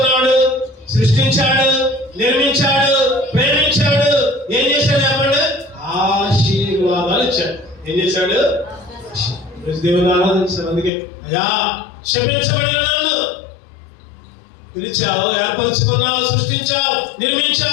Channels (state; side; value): drops out; right; at 10.9 s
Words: సృష్టించాడు, నిర్మించాడు, ప్రేమించాడు. ఏం చేశాడు చెప్పండి? ఆశీర్వాదాలు ఇచ్చాడు. ఏం చేశాడు? దేవుని ఆరాధించాడు. అందుకే అయ్యా క్షమించబడిన నన్ను పిలిచావు, ఏర్పరచుకున్నావు, సృష్టించావు,